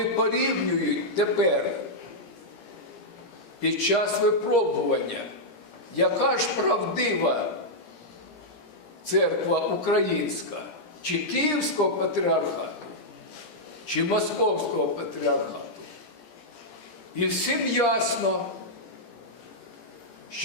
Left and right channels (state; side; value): late; right; 17 ms